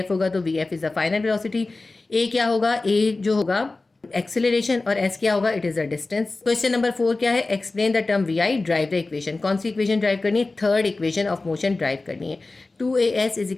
होगा तो VF is the final velocity. A क्या होगा? A जो होगा एक्सेलरेशन, और S क्या होगा? It is the distance. Question number 4 क्या है? Explain the term VI, drive the equation. कौन सी इक्वेशन ड्राइव करनी है? Third equation of motion drive करनी है।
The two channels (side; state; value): right; quieter; 3.4 dB